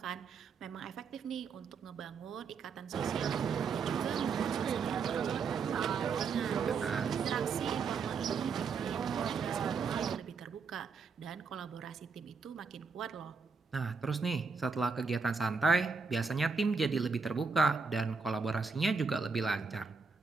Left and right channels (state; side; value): quieter; left; 5.1 dB